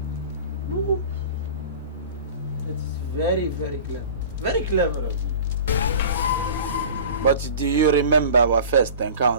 It's very, very clever. Very clever of you. But do you remember our first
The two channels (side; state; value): both; inverted; correlation -0.39